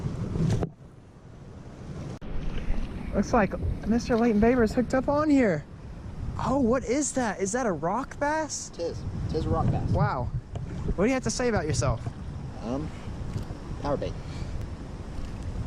Looks like Mr. Leighton Baber's hooked up on here. Oh, what is that? Is that a rock bass? Tis a rock bass. Wow. What do you have to say about yourself? Power bait.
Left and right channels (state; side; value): identical; both; correlation 1.00